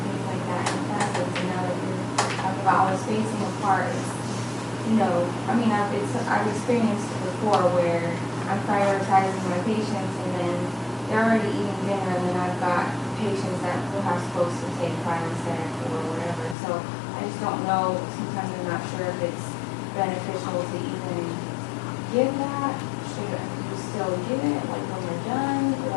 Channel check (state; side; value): drops out; right; at 16.6 s